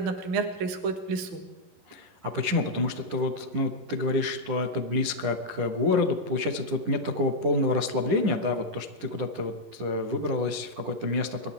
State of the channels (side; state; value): left; late; 10 ms